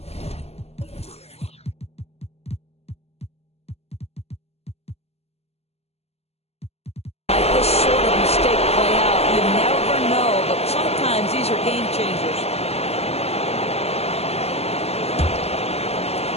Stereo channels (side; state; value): right; late; 0.30 ms